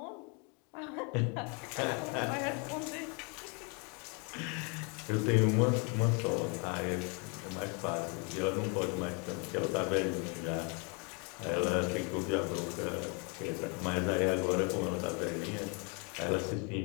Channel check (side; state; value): right; quieter; 33.7 dB